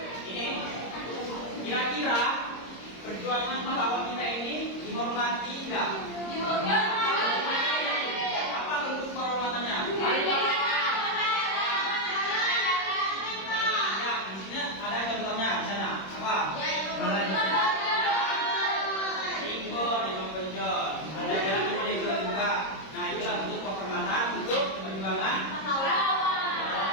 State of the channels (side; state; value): right; late; 26 ms